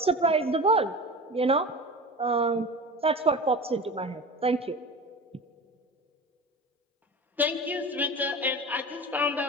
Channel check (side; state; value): both; normal; correlation 0.32